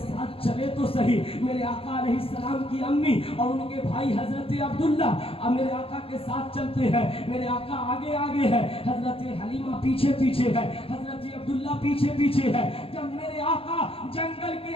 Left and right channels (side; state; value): right; late; 0.27 ms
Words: चले तो सही। मेरे आका अलैहिस्सलाम की अम्मी और उनके भाई हजरत अब्दुल्ला अब मेरे आका के साथ चलते हैं। मेरे आका आगे आगे है, हजरत हलीमा पीछे पीछे है, हजरत अब्दुल्ला पीछे पीछे है। जब मेरे आका जंगल के